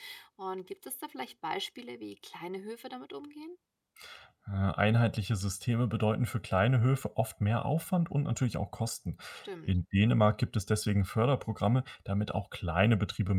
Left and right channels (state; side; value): identical; both; correlation 1.00